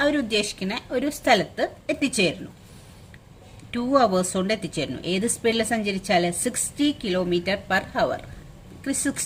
അവരുദ്ദേശിക്കുന്ന ഒരു സ്ഥലത്ത് എത്തിച്ചേരുന്നു. 2 hours കൊണ്ട് എത്തിച്ചേരുന്നു. ഏത് സ്പീഡിൽ സഞ്ചരിച്ചാൽ? 60 km/h.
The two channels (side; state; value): both; identical; correlation 1.00